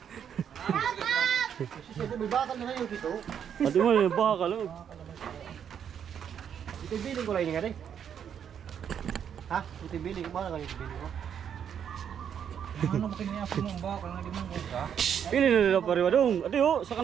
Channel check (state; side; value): quieter; left; 8.4 dB